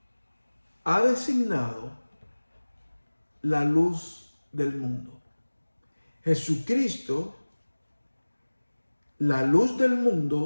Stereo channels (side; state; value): both; inverted; correlation -1.00